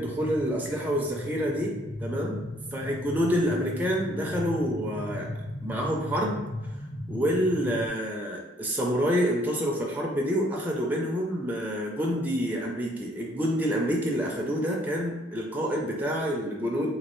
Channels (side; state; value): both; normal; correlation 0.64